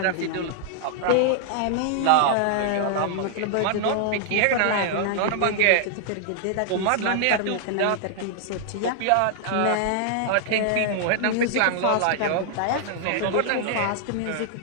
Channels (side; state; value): both; different; correlation 0.00